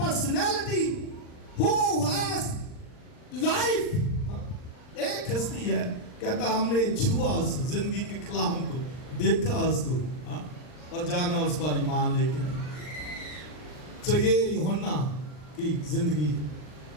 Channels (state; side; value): late; right; 39 ms